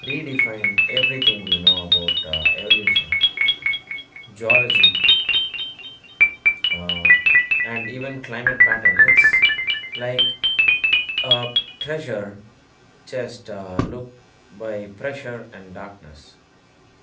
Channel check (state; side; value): identical; both; correlation 1.00